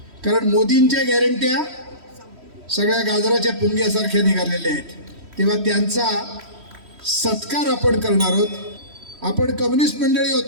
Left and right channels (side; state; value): left; late; 3.1 ms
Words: कारण मोदींच्या गॅरंट्या सगळ्या गाजराच्या पुंग्यासारख्या निघालेल्या आहेत. तेव्हा त्यांचा सत्कार आपण करणार आहोत. आपण कम्युनिस्ट मंडळी आहोत,